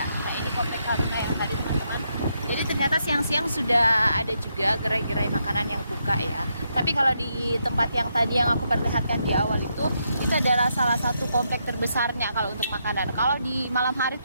Nah, ini komplek Haruna yang tadi teman-teman. Jadi ternyata siang-siang sudah ada juga gerai-gerai makanan yang buka ya. Tapi kalau di tempat yang tadi yang aku perlihatkan di awal itu adalah salah satu komplek terbesarnya kalau untuk makanan. Kalau di malam hari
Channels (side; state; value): both; inverted; correlation -0.79